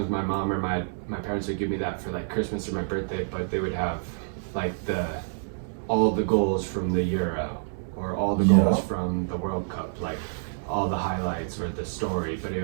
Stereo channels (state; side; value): silent; left; 59 dB below the other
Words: my mom or my parents would give me that for like Christmas or my birthday, but they would have like all the goals from the Euro or all the goals from the World Cup, like all the highlights or the story, but it